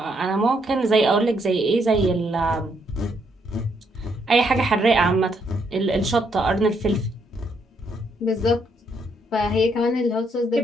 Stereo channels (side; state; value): both; normal; correlation 0.74